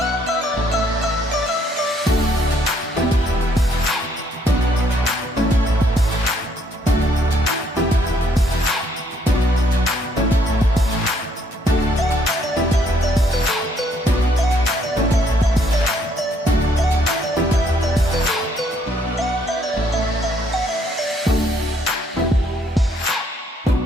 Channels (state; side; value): normal; both; correlation 0.67